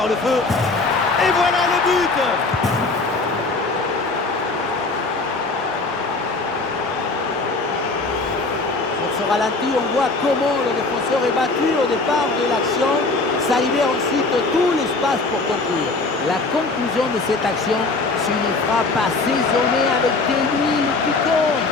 le feu. Et voilà le but. Sur ce ralenti, on voit comment le défenseur est battu au départ de l'action. Ça libère ensuite tout l'espace pour conclure. La conclusion de cette action, c'est une frappe assaisonnée avec des huiles piquantes.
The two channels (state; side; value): quieter; right; 3.6 dB